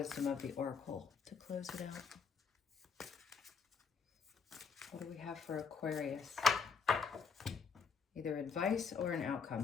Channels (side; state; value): right; quieter; 5.7 dB